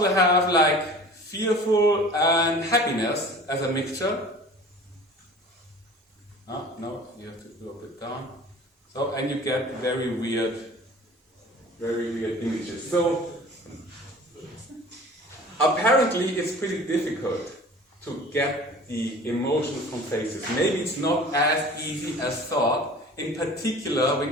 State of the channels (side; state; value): both; normal; correlation 0.43